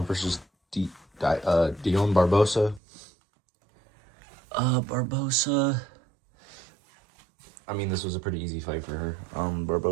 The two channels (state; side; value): drops out; left; at 2.8 s